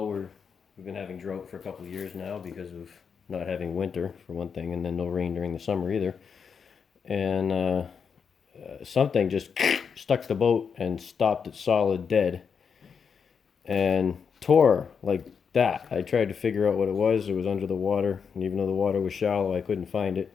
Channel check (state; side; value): quieter; right; 6.4 dB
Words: We've been having drought for a couple of years now because of not having winter, for one thing, and then no rain during the summer either. And something just stuck the boat and stopped it solid dead and tore like that. I tried to figure out what it was. It was under the water, and even though the water was shallow, I couldn't find it.